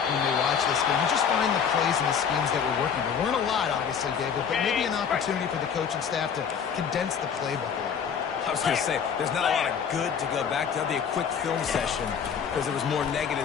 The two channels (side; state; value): right; quieter; 7.2 dB